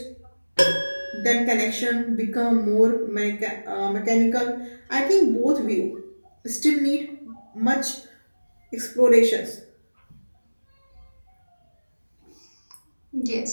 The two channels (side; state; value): both; inverted; correlation -1.00